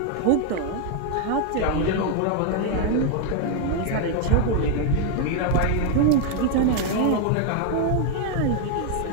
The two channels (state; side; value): different; both; correlation 0.01